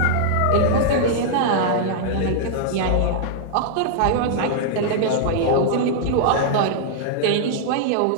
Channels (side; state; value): both; different; correlation -0.01